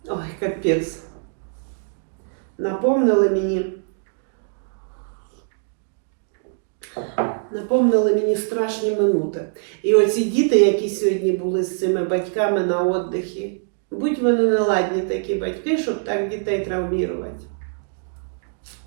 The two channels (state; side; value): silent; left; digital silence